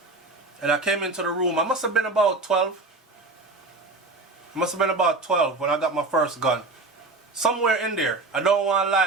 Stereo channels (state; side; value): quieter; left; 3.4 dB